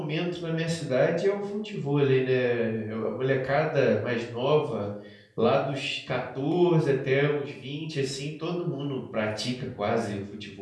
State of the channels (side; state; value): both; identical; correlation 1.00